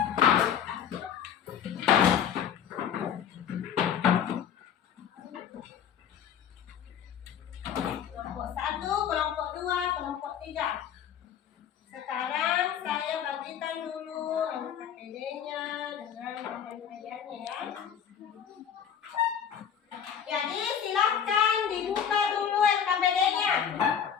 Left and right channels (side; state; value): right; quieter; 8.5 dB